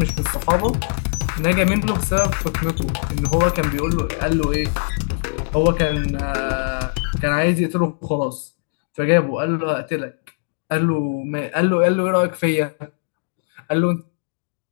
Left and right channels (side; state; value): right; silent; digital silence